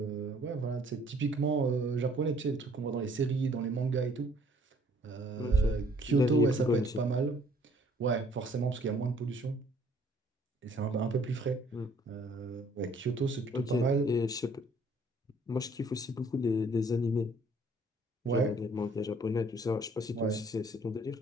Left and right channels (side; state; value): both; normal; correlation 0.60